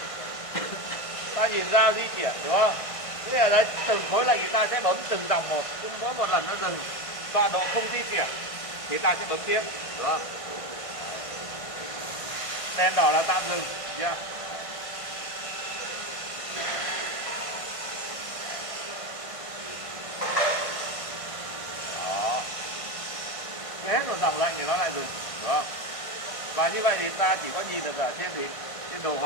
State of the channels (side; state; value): right; late; 1.5 ms